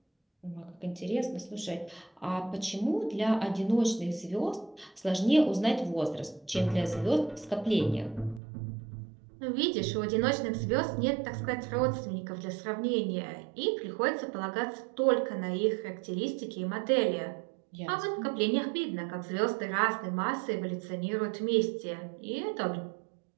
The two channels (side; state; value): left; drops out; at 8.4 s